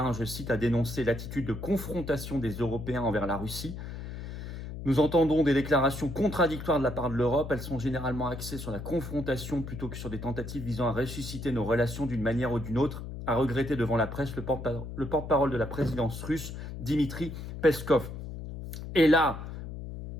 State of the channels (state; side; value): noise; left; hum, 8 dB below the sound